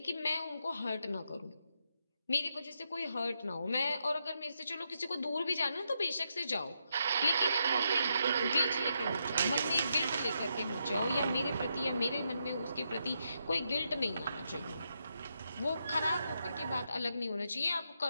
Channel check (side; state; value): both; inverted; correlation -0.81